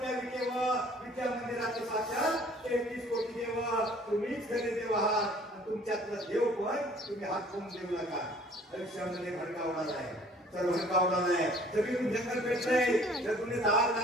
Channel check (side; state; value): both; normal; correlation 0.54